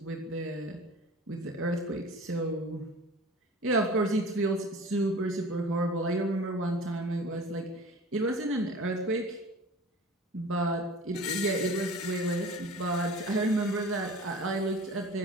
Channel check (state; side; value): normal; both; correlation 0.40